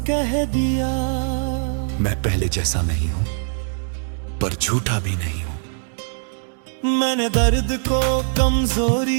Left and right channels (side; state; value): left; silent; digital silence